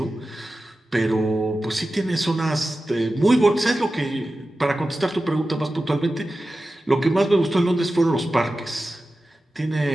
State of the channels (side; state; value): both; normal; correlation 0.94